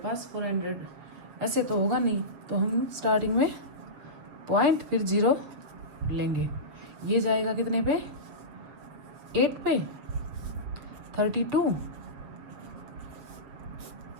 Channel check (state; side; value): late; left; 7.0 ms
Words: 400, ऐसे तो होगा नहीं, तो हम स्टार्टिंग में पॉइंट फिर 0 लेंगे। ये जाएगा कितने पे 8 पे 32